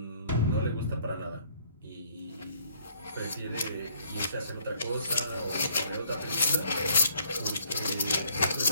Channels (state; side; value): inverted; both; correlation -0.64